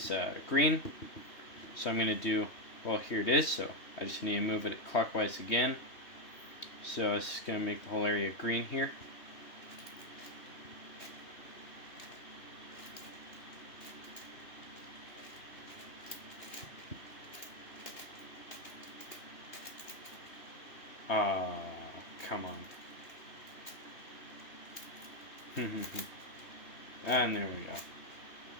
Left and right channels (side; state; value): right; late; 3.2 ms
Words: green. So I'm going to do, well, here it is, so I just need to move it clockwise again. So it's just going to make the whole area green here. Come on. And there